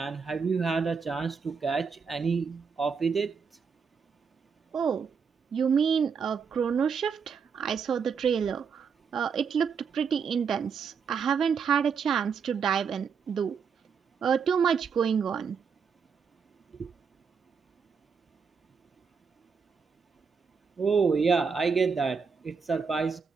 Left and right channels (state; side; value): quieter; left; 6.0 dB